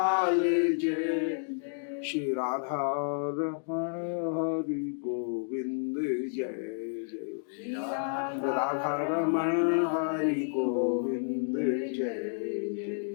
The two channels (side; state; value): right; silent; digital silence